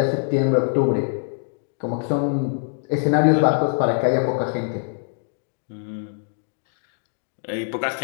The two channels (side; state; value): right; silent; digital silence